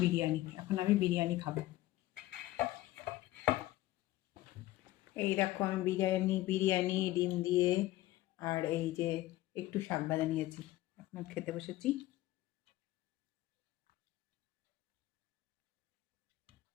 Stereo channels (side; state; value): right; quieter; 16.5 dB